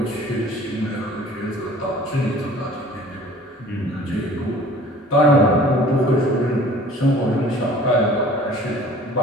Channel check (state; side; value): normal; both; correlation 0.48